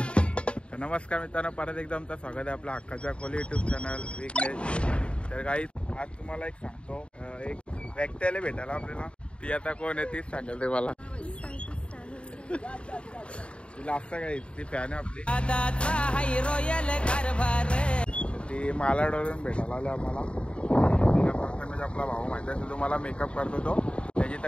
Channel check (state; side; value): late; right; 0.058 ms